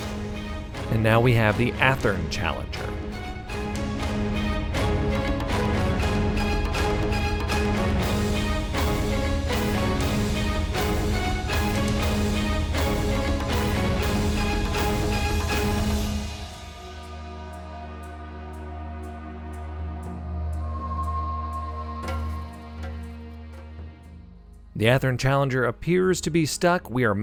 And now we have the Athern Challenger. The Athern Challenger appears to be stuck. We are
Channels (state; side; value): identical; both; correlation 1.00